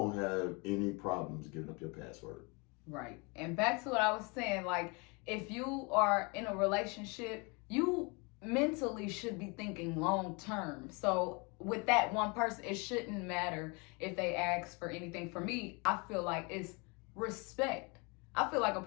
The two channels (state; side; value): quieter; right; 30.1 dB